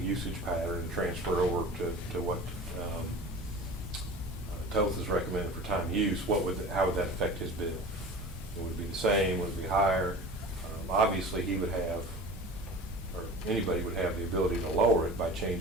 usage pattern and transfer over to what Toth is recommended for time use, how would that affect his bill? Would it be the same? Would it be higher? Obviously, he would have, or anybody would have the ability to lower it by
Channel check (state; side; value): normal; both; correlation 0.37